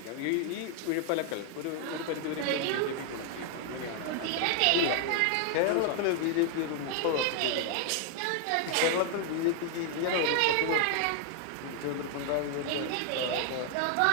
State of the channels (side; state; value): both; different; correlation 0.00